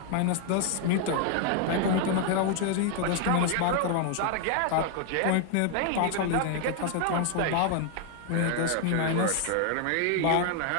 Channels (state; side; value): different; both; correlation 0.00